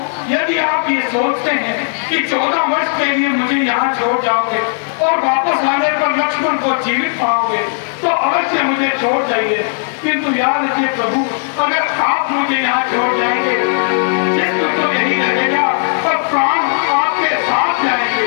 यदि आप ये सोचते हैं कि 14 वर्ष के लिए मुझे यहाँ छोड़ जाओगे और वापस आने पर लक्ष्मण को जीवित पाओगे तो अवश्य मुझे छोड़ जाइए। किंतु याद रखिए प्रभु, अगर आप मुझे यहाँ छोड़ जाएंगे मृत्यु तो यही रहेगा और प्राण आपके साथ जाएंगे।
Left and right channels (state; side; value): silent; right; digital silence